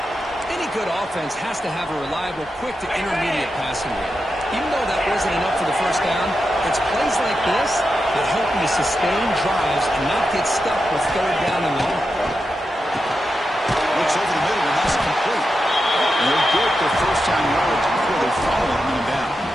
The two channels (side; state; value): both; normal; correlation 0.88